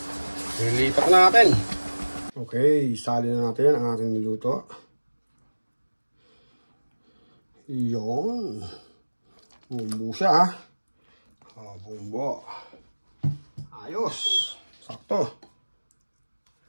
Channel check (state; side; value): inverted; both; correlation -1.00